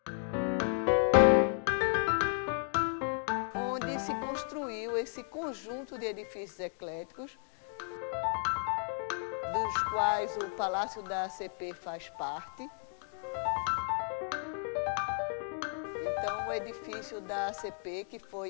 onde se construiu esse conjunto de edifícios ecléticos, dos quais o Palácio da ACP faz parte. Então, o edifício da ACP, que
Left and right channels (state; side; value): silent; right; 55 dB below the other